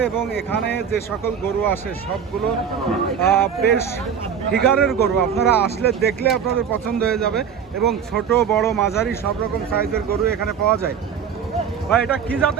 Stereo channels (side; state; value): left; quieter; 7.5 dB